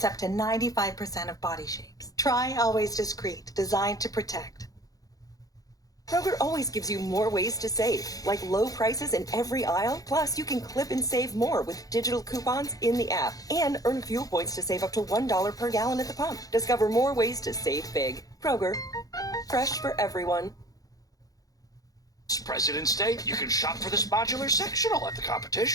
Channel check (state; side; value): late; right; 0.17 ms